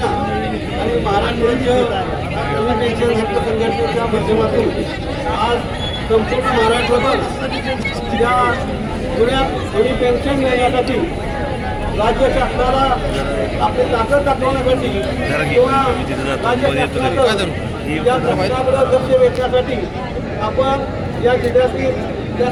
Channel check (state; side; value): identical; both; correlation 1.00